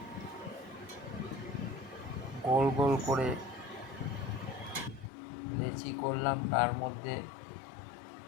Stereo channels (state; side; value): drops out; right; at 5.1 s